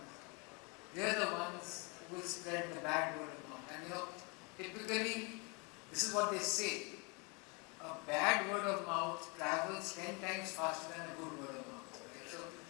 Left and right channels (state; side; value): quieter; right; 31.5 dB